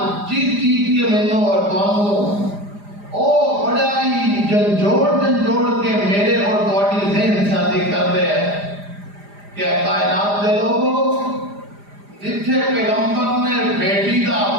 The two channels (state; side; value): late; left; 4.9 ms